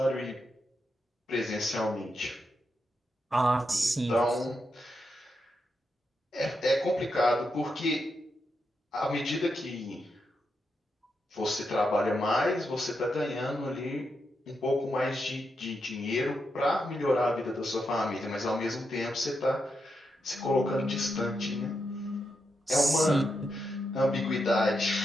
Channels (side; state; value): both; normal; correlation 0.84